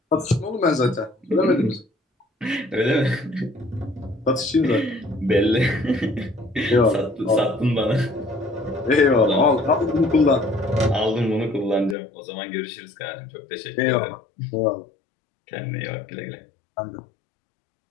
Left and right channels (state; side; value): drops out; right; at 12.0 s